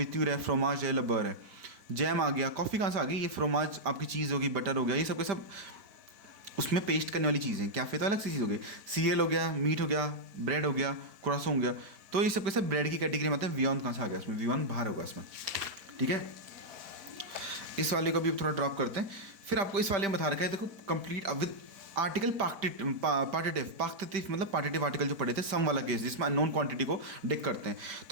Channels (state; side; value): late; left; 5.1 ms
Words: है, फ्रोमाज है, लबर है, जैम आ गया। कॉफ़ी कहाँ से आ गई, ये फ्रोमाज आपकी चीज़ होगी, बटर हो गया, ये सब के सब उसमें पेस्ट करने वाली चीज़ें। कैफ़े तो अलग सी चीज़ हो गई, सीरियल हो गया, मीट हो गया, ब्रेड हो गया, क्रोसो हो गया, तो ये सब के सब ब्रेड की कैटेगरी में आते हैं। वियॉन कहाँ से आ गया, इसमें वियॉन बाहर होगा इसमें, ठीक है। इस वाले को भी थोड़ा ड्रॉप करते हैं। फिर आपको इस वाले में बता रखा है, देखो कंप्लीट विद आर्टिकल पार्टिटिव मतलब पार्टिटिव आर्टिकल जो पढ़े थे, सम वाला केस जिसमें अननोन क्वांटिटी को डिक करते हैं।